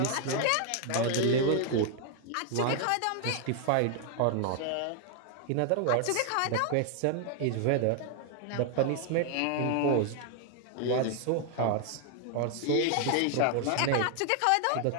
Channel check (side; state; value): both; different; correlation 0.00